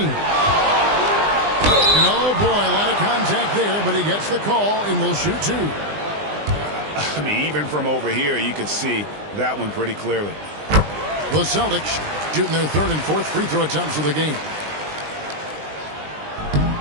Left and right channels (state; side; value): late; left; 20 ms